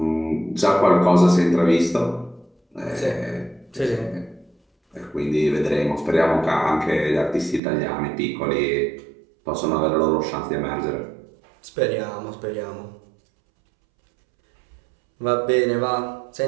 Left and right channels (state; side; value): drops out; left; at 7.6 s